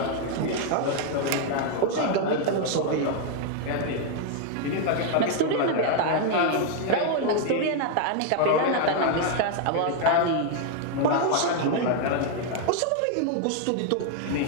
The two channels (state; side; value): different; both; correlation 0.00